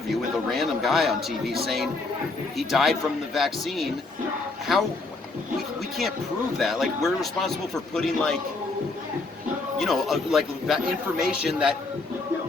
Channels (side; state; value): right; quieter; 3.5 dB